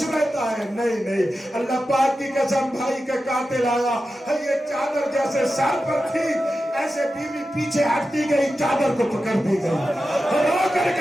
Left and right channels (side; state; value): both; normal; correlation 0.92